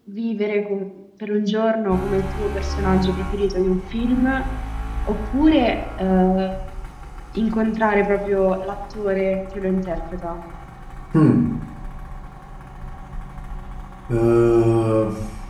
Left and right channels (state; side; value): identical; both; correlation 1.00